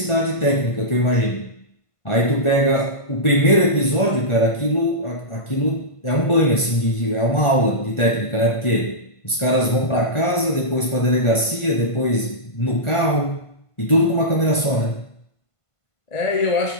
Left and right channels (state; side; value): late; right; 1.5 ms